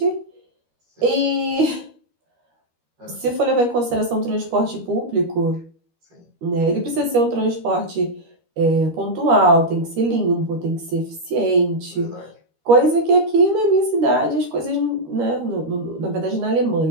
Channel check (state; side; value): late; left; 13 ms